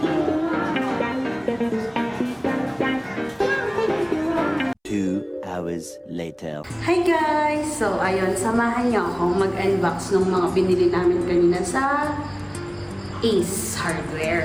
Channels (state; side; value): identical; both; correlation 1.00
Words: Later. Hi guys! So, ayun, samahan niyo akong mag-unbox ng mga binili namin kanina sa Ace